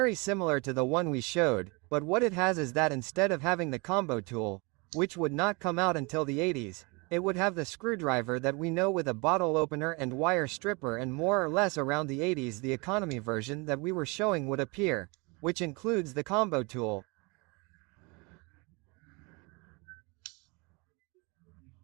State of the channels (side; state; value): left; quieter; 28.7 dB